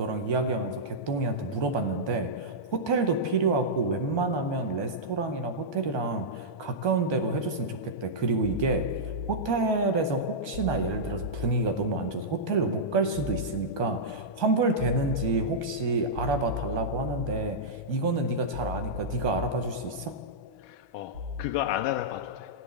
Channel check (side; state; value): right; late; 1.2 ms